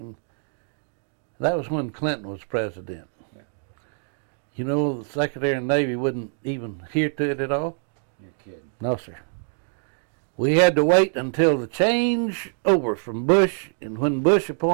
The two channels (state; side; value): silent; left; 62 dB below the other